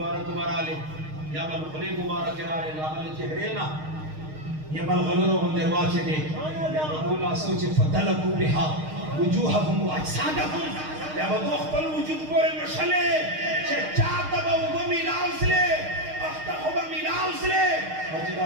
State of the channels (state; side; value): late; left; 6.5 ms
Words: مبارا لے یا بل خلی مبارک رارے یا بل چہرینا یا بل غلورو ہم درواچے دے اولا سوچے فدلکو بہا وجوہم و اجسادہم یا بل اخبر وجود پورے مشلے چھے چاہتا با وہ ملاؤس لے اختخو با ملاؤس لے